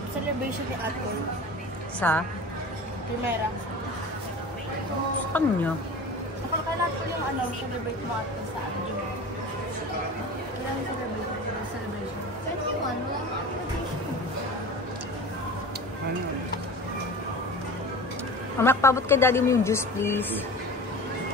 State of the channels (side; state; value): both; normal; correlation 0.35